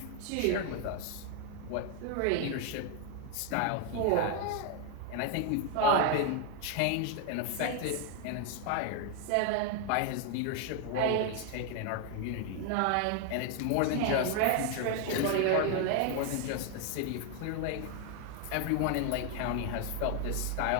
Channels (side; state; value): both; different; correlation 0.00